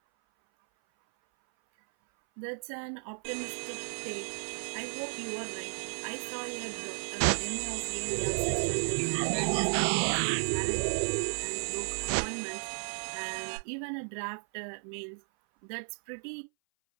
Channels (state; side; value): silent; left; 55 dB below the other